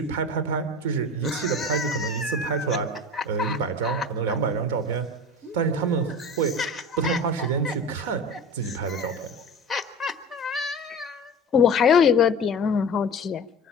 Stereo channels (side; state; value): both; normal; correlation 0.34